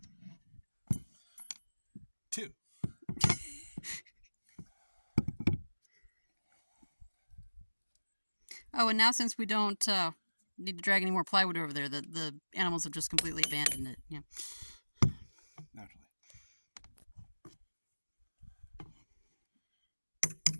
2. Oh, and now since we don't need to drag any more plywood over there, the animals have just completely abandoned it. Yeah. Naturally.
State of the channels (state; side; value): inverted; both; correlation -1.00